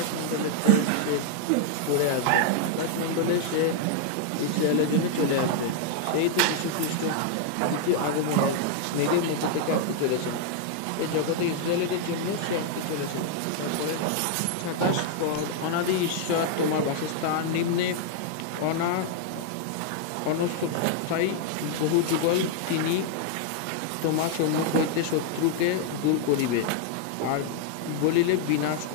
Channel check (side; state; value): both; different; correlation 0.00